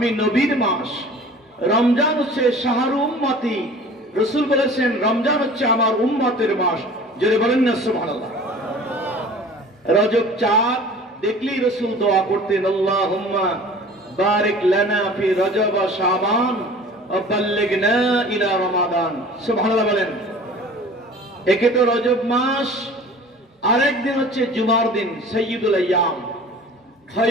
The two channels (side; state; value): both; normal; correlation 0.44